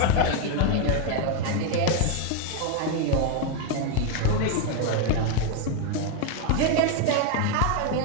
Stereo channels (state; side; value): different; both; correlation 0.01